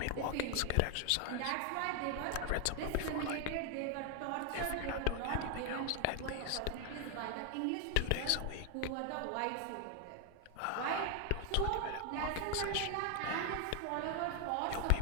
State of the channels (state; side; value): different; both; correlation 0.00